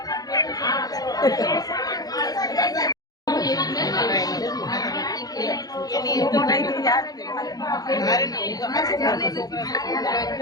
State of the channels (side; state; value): right; late; 0.18 ms